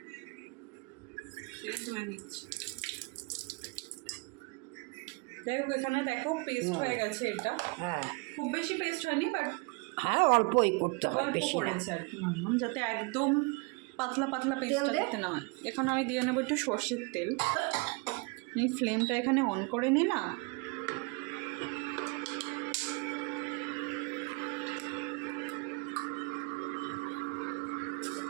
ধুয়ে নিচ্ছি। যাই হোক, এখানে দেখো পেস্ট হয়ে গেছে এটা। হ্যাঁ, খুব বেশি পেস্ট হয়নি, বাট হ্যাঁ অল্পই করতে হয়, অল্প বেশি করেছে আর কি মাম্মাম, যাতে একদম পাতলা পাতলা পেস্টটা দিতে না হয়। এখন আমি দিয়ে নেবো একটু সর্ষের তেল। এই ফ্লেমটা এখানে অন করে নিলাম।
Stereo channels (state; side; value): quieter; left; 29.9 dB